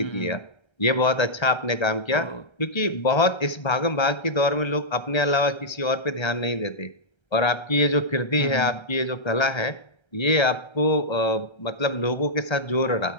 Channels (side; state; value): right; late; 1.3 ms